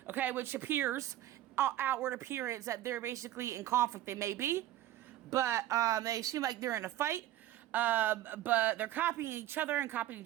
okay, which appears, outward appearance that they're basically in conflict. They may be, but they seem like they're in a fight. But they're copying each other and copying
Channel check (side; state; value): left; quieter; 13.7 dB